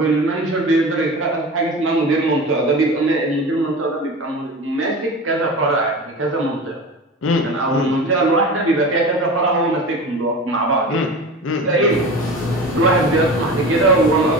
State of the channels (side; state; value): both; normal; correlation 0.32